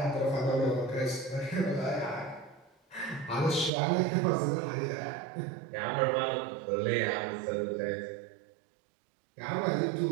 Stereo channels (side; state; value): left; drops out; at 3.7 s